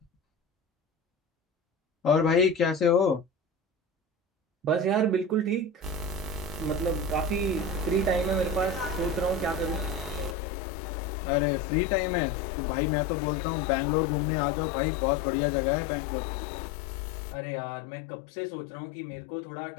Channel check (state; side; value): drops out; right; at 10.4 s